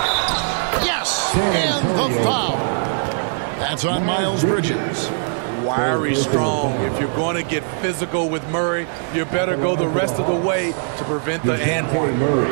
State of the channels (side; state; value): left; silent; digital silence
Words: Yes! And the foul. That's on Miles Bridges. Wiry strong. If you're going to get physical with Murray, you better go the rest of the way to prevent the and one. Murray.